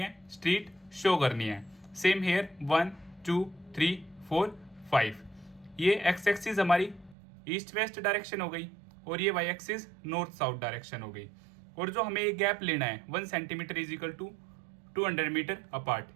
स्ट्रीट शो करनी है। सेम हेयर 1 2 3 4 5 ये एक्स एक्सिस हमारी ईस्ट वेस्ट डायरेक्शन हो गई और ये Y axis north south direction हो गई। और जो हमें ये गैप लेना है 1 centimetre is equal to 200 metre apart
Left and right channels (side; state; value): left; drops out; at 7.2 s